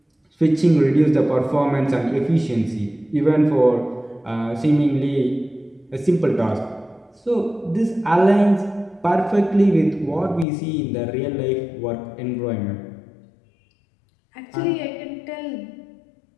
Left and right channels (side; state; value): right; drops out; at 10.5 s